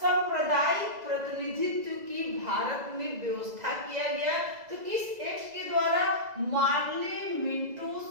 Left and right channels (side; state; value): left; late; 2.0 ms